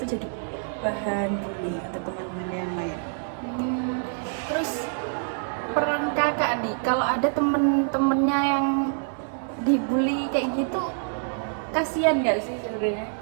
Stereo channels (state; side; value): silent; left; 61 dB below the other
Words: jadi bahan bully untuk teman-teman yang lain. Terus peran kakak nih, kalau ada temen-temennya yang dibully kayak gitu, kasihan nggak sih sebenarnya?